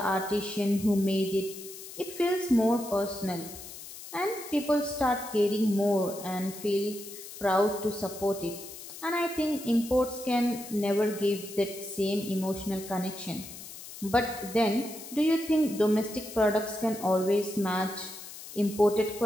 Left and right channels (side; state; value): left; noise; hiss, 13 dB below the sound